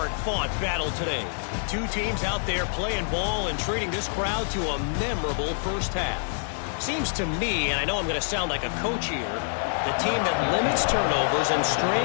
battle today. 2 teams out there playing ball and treating this crowd to a memorable first half. Seems to me, and I know I'm going to sound like a coach here, the team that limits turnovers and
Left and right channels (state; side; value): silent; right; digital silence